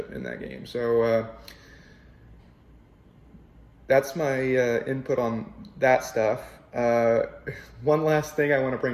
in that game. So that's my input on that stuff. One last thing I want to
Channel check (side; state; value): both; identical; correlation 1.00